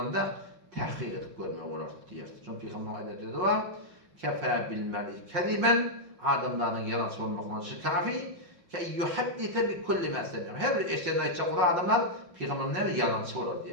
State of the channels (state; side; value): late; left; 5.7 ms